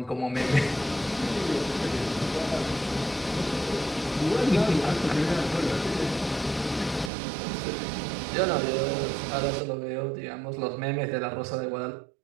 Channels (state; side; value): drops out; left; at 7.1 s